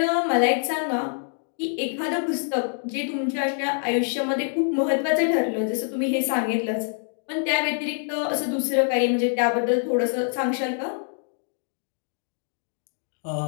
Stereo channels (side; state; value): right; silent; 61 dB below the other